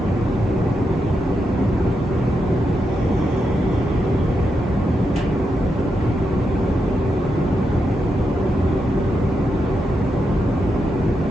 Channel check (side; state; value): both; normal; correlation 0.85